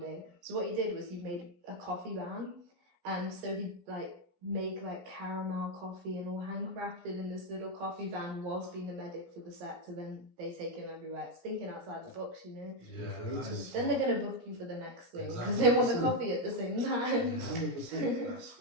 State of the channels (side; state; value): left; late; 17 ms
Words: So what he did was he made a coffee van, and so he'd like make like caramel coffee and all handcrafted in this little coffee van whilst being the medic for the set, so then they take him everywhere. It's thinking outside the box, you know. Then they're gonna book you for the next thing because they want the coffee at the same time. 100%. That's